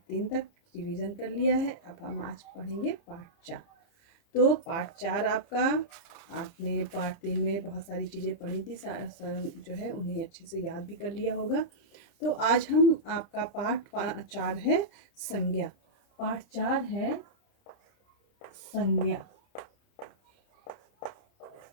3 तक रिवीजन कर लिया है। अब हम आज पढ़ेंगे पार्ट 4। तो पार्ट 4 आपका, आपने पार्ट 3 में बहुत सारी चीज़ें पढ़ी थी, जो है उन्हें अच्छे से याद भी कर लिया होगा। तो आज हम आपका पार्ट 4 है संज्ञा। पार्ट 4 है संज्ञा।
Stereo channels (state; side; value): late; right; 30 ms